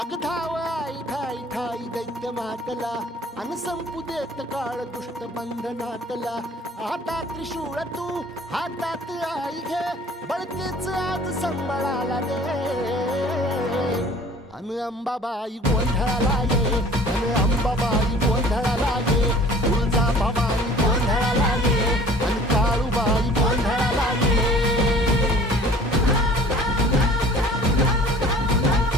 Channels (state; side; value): normal; both; correlation 0.48